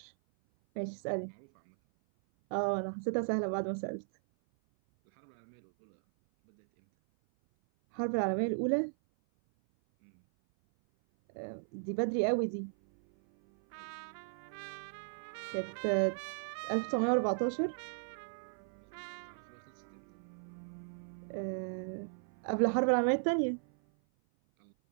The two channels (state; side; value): silent; left; 54 dB below the other